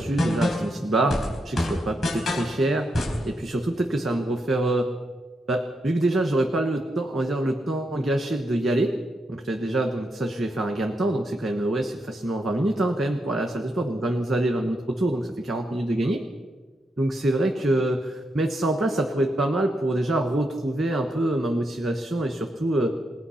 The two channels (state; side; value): normal; both; correlation 0.82